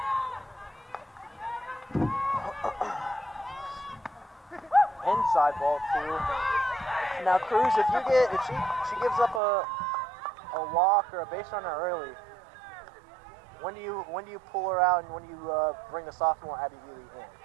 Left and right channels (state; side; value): drops out; left; at 9.4 s